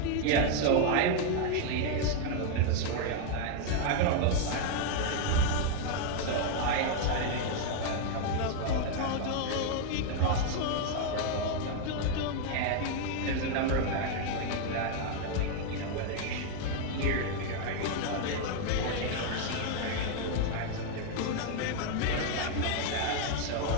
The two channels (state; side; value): different; both; correlation 0.00